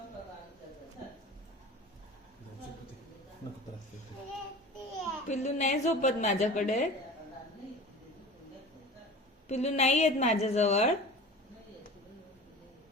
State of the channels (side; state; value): both; normal; correlation 0.37